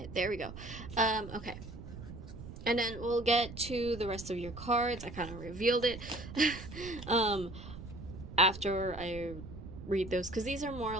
There we go. Okay. And then we'll get to the rest of your cards. I kind of revealed it after I read those, because these are more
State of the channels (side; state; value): right; noise; rumble, 12 dB below the sound